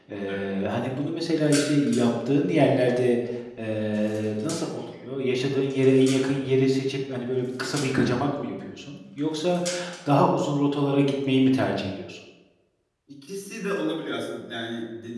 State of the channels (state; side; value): identical; both; correlation 1.00